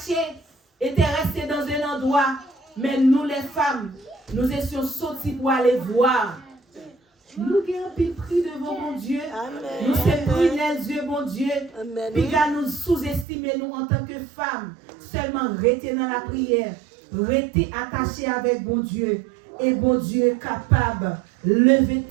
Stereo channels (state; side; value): drops out; left; at 13.2 s